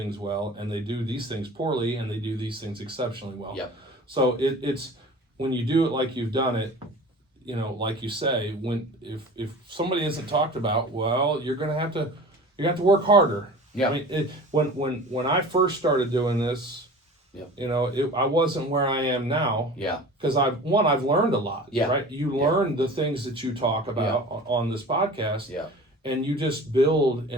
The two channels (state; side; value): normal; both; correlation 0.39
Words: well, and they do these things poorly, and they do these things exceptionally well. Yep. So it's when you do it like you've done it, like you say, if somebody isn't talked about, well, you're going to have to work harder. Yeah. I mean, when I first started doing this, I wasn't where I am now. Yeah. Because I've learned a lot. Yeah. Right. You learn the things that you talk about on this podcast. Yeah. And you just build